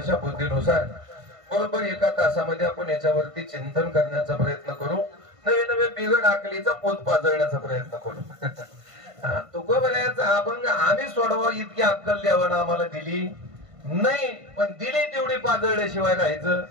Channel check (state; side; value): late; left; 1.5 ms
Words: बुद्धीनुसार बरोबर 1 तासामध्ये आपण याच्यावरती चिंतन करण्याचा प्रयत्न करू. नवे नवे बिघड आकलीचा पोत पाजळण्याचा प्रयत्न करू. तुकोबाऱ्याचा अभंग आम्ही सोडवा इतकी अक्कल देवानं आम्हाला दिली नाही, पण दिली तेवढी पाजळल्याशिवाय राहायचं.